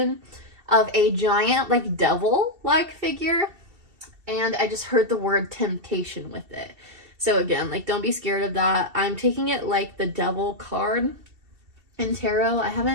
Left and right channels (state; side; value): late; left; 2.7 ms